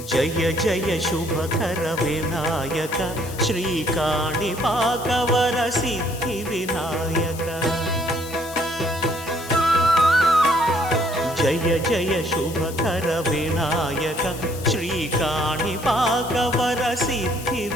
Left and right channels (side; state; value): left; noise; hiss, 14 dB below the sound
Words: జయ జయ శుభకర వినాయక శ్రీకాణిపాకవర సిద్ధి వినాయక జయ జయ శుభకర వినాయక శ్రీకాణిపాకవర సిద్ధి